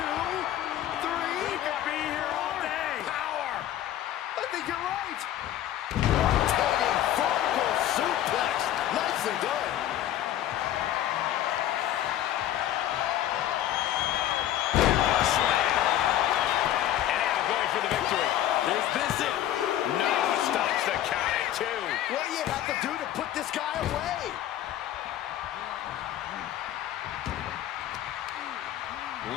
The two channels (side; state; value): right; quieter; 12.3 dB